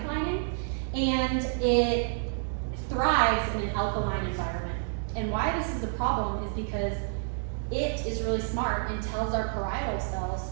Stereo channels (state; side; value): silent; left; digital silence